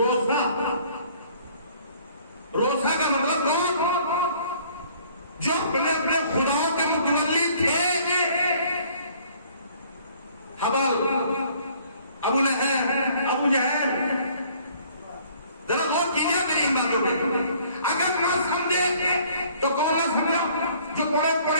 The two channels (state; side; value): inverted; both; correlation -0.57